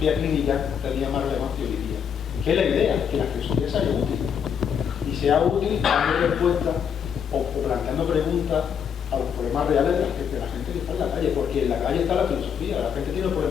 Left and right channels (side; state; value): right; quieter; 7.6 dB